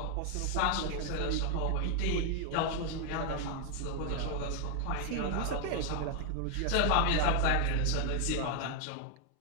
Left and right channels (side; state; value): both; different; correlation 0.00